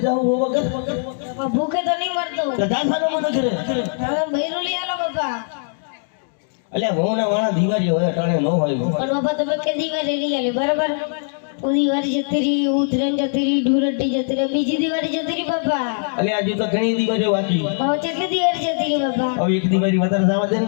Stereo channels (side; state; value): right; silent; digital silence